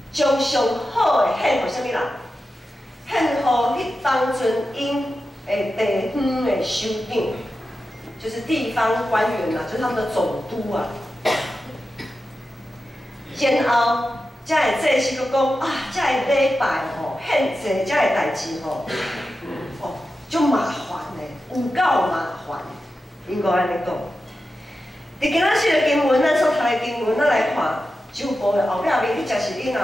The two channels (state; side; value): normal; both; correlation 0.91